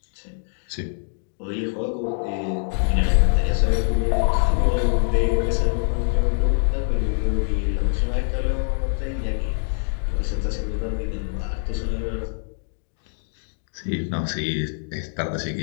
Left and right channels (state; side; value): silent; right; digital silence